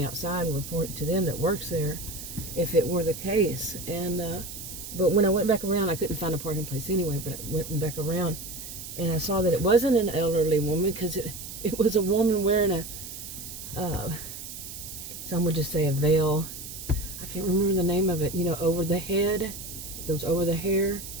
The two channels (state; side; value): noise; right; hiss, 10 dB below the sound